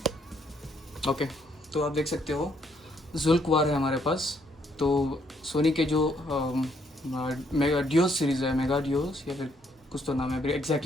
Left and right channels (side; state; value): both; normal; correlation 0.70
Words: ओके, तो आप देख सकते हो जुल्क्वार है हमारे पास। तो सोनी के जो मेगा डियोस सीरीज़ है, मेगा डियोस या फिर कुछ तो नाम है,